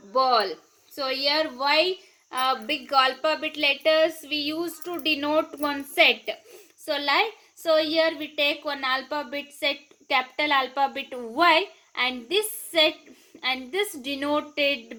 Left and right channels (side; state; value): both; identical; correlation 1.00